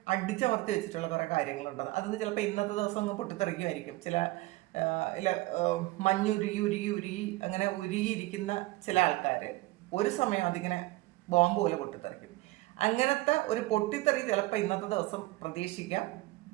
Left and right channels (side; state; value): left; quieter; 19.7 dB